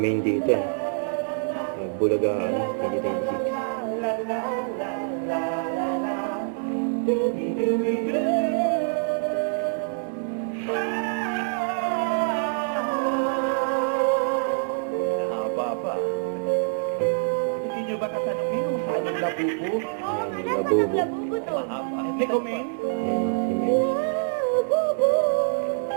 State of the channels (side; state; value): left; silent; digital silence